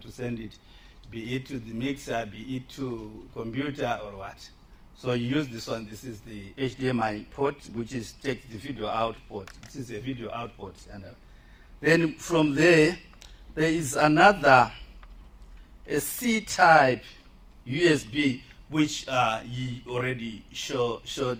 to send it, be it to the mixer, be it to computer or what. So you use this one. This is the HDMI port, which takes the video out port. This is a video out port. And then from there, there is another, a C-type USB, which he already showed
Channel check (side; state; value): both; identical; correlation 1.00